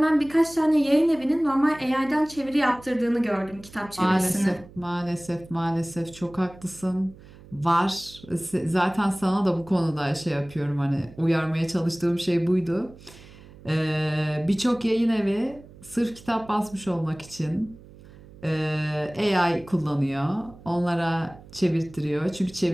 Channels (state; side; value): noise; right; hum, 21 dB below the sound